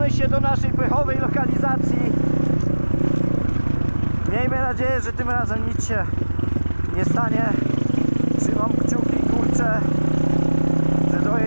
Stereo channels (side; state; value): both; inverted; correlation -1.00